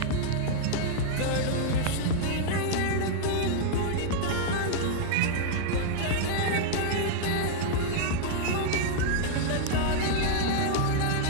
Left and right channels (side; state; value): both; different; correlation -0.01